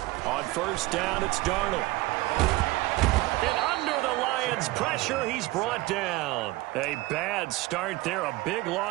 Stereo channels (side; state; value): left; quieter; 20.1 dB